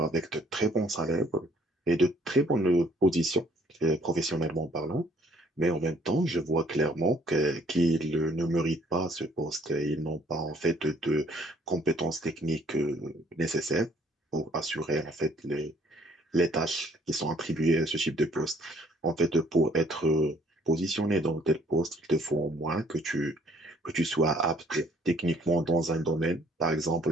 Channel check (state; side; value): normal; both; correlation 0.61